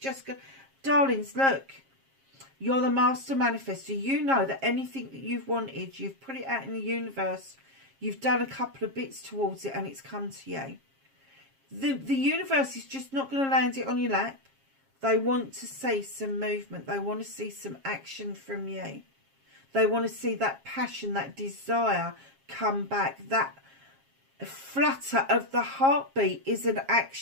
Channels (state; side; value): late; left; 7.4 ms